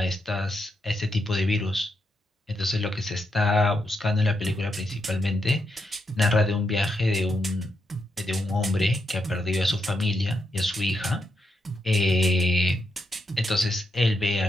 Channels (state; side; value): normal; both; correlation 0.82